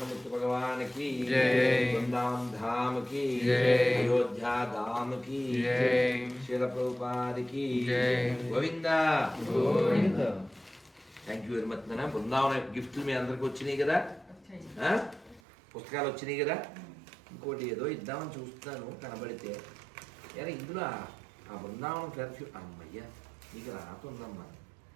భగవాన్ కి వృందావన్ ధామ్ కి అయోధ్యా ధామ్ కి శీల ప్రభుపాద్ కి Govinda Govinda. Thank you very much. నాన్న బృందావన గిఫ్ట్లు మీ అందరికి వచ్చినాయి కదా, పుస్తకాలు వచ్చినాయి కదా. ఇంకోటి ఏదో ఇద్దామని చూస్తున్నాను కనబడితే. ఎలా ఇందులో ఆ బృందావనం పెర్ఫ్యూమ్ అమ్మయ్యా నీకు రాతుందమ్మా.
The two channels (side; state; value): left; drops out; at 15.4 s